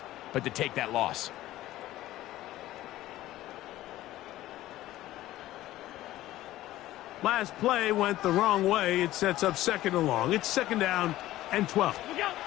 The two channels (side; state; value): right; quieter; 15.3 dB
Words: but to take that loss. Last play went the wrong way. It sets up 2nd and long. It's 2nd down and 12.